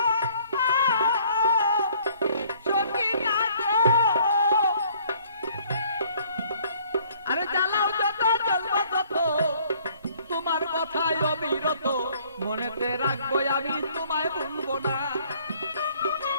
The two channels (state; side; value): inverted; both; correlation -0.60